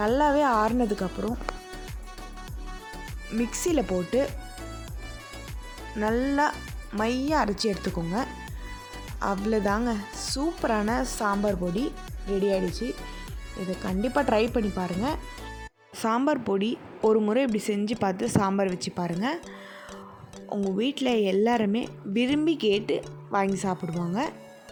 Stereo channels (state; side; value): identical; both; correlation 1.00